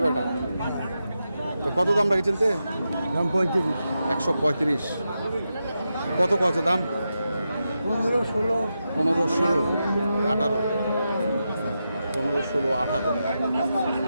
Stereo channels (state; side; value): inverted; both; correlation -0.88